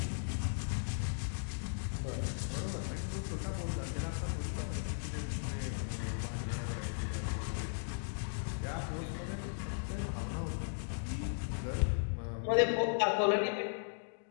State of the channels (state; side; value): silent; right; digital silence